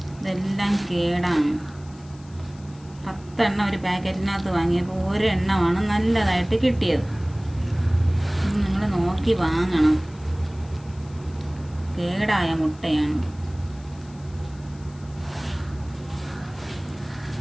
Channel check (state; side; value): noise; left; hiss, 26 dB below the sound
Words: ഇതെല്ലാം കേടാണ്. 10 എണ്ണം ഒരു പാക്കറ്റിനകത്ത് വാങ്ങിയപ്പോൾ ഒരെണ്ണമാണ് നല്ലതായിട്ട് കിട്ടിയത്. നിങ്ങൾ നോക്കി വാങ്ങണം. കേടായ മുട്ടയാണ്.